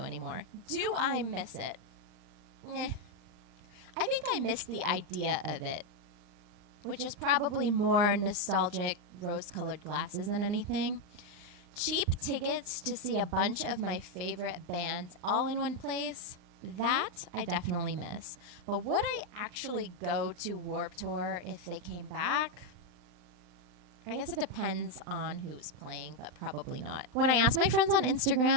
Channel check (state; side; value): late; left; 39 ms